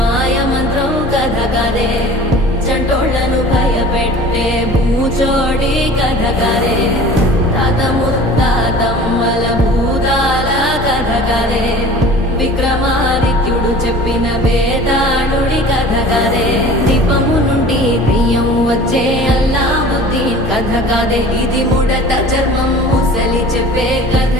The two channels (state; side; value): normal; both; correlation 0.43